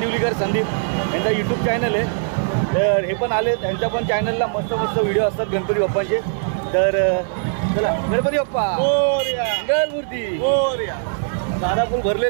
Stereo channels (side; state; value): left; silent; digital silence